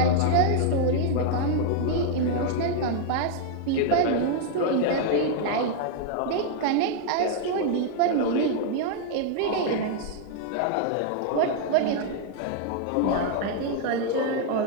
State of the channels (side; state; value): both; different; correlation 0.00